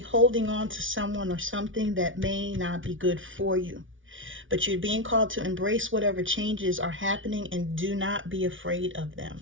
on to someone or something that may not be good for you, but you're being called to embrace whatever changes are happening and do not be afraid of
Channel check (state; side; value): late; left; 0.57 ms